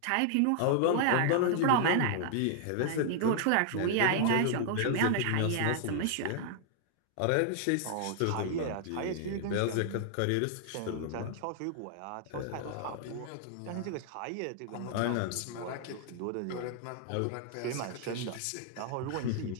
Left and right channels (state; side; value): different; both; correlation 0.00